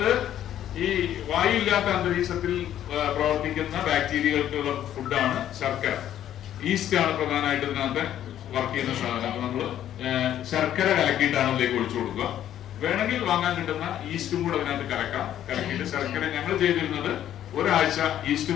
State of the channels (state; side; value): quieter; right; 11.3 dB